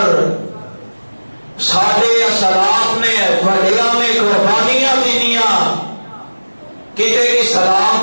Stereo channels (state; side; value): inverted; both; correlation -1.00